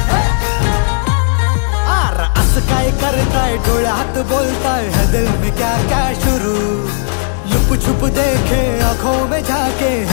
काय करताय डोळ्यात बोलताय है दिल में क्या क्या शुरू लुप छुप देखे आंखों में झाके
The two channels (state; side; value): silent; right; digital silence